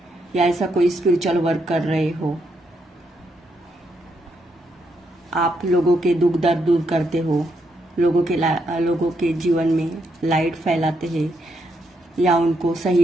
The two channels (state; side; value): normal; both; correlation 0.79